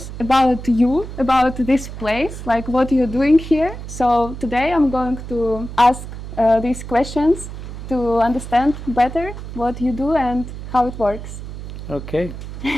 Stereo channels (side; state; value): right; noise; hum, 10 dB below the sound